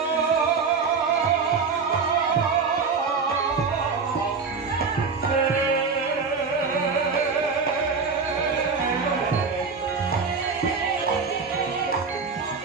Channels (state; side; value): quieter; left; 5.0 dB